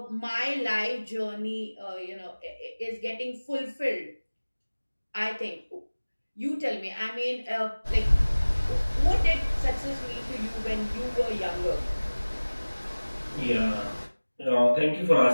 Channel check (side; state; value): both; inverted; correlation -1.00